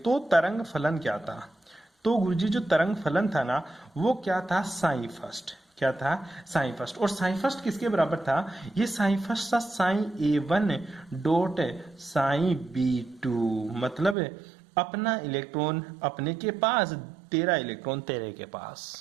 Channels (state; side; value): drops out; left; at 14.2 s